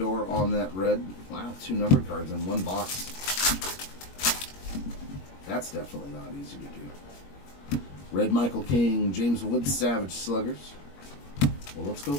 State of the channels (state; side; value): late; right; 21 ms